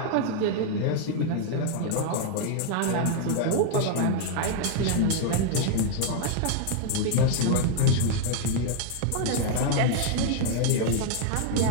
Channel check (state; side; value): different; both; correlation 0.00